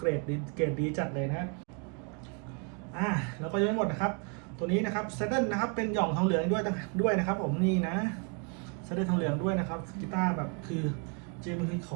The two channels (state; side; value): quieter; left; 36.7 dB